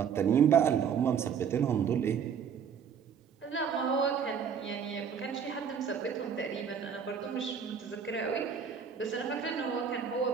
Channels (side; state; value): left; quieter; 7.1 dB